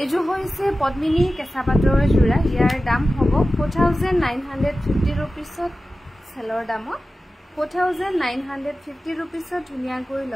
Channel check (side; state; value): both; normal; correlation 0.95